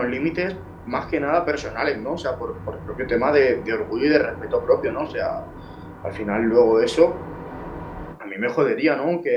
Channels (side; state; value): both; identical; correlation 1.00